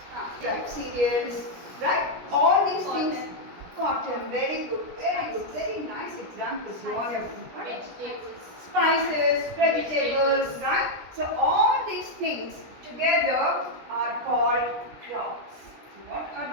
Right, cereals, right? All these things. Cotton, very good, very nice examples you all have given. Spices, vegetables, right? So all these things together are called crops. So what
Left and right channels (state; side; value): late; left; 17 ms